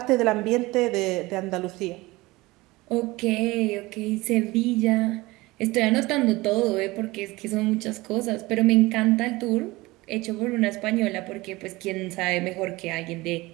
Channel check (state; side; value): quieter; left; 20.9 dB